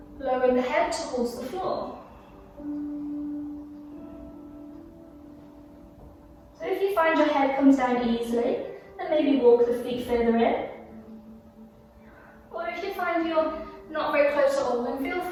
Lowering the head towards the floor. So if you find your head comes down easily, then maybe walk the feet further in. Or if you find you're not very close at all, then feel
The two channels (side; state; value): both; identical; correlation 1.00